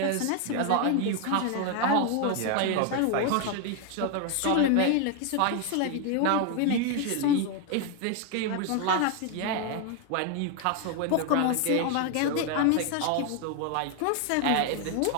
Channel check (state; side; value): different; both; correlation 0.01